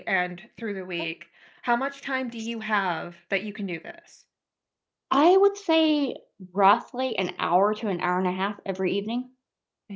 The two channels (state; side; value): identical; both; correlation 1.00